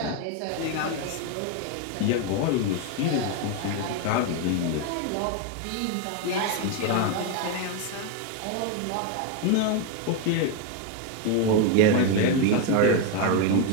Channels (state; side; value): different; both; correlation 0.02